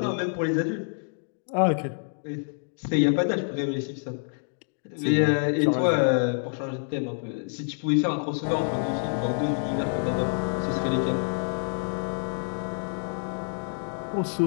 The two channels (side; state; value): right; silent; 60 dB below the other